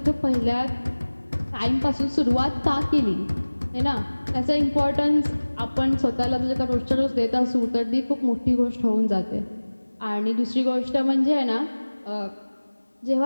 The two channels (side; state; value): both; inverted; correlation -1.00